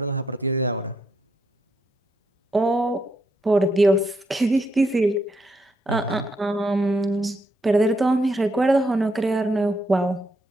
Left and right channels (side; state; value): both; normal; correlation 0.77